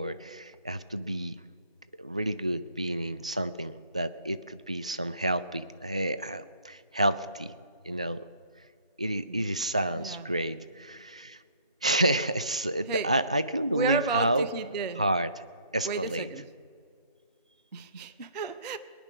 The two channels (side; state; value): both; inverted; correlation -0.58